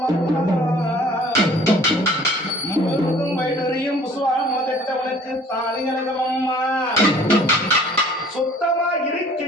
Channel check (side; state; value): both; normal; correlation 0.52